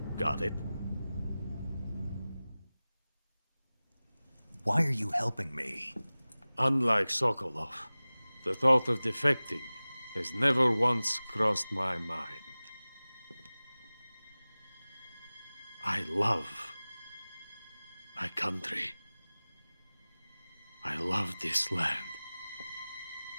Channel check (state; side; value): inverted; both; correlation -0.98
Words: Got it? Why are you helping me? Unlike Sokolov, the thought of defecting has never once crossed my mind. I love my country. I love this land.